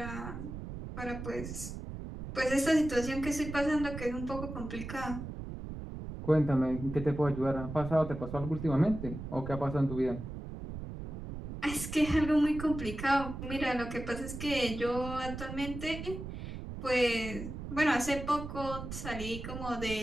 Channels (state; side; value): noise; right; rumble, 8 dB below the sound